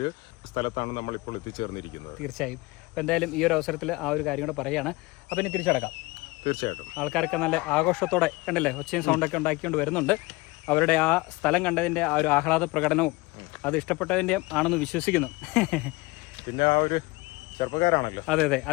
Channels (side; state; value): right; quieter; 22.9 dB